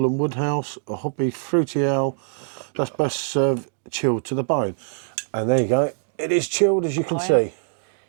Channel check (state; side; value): silent; left; digital silence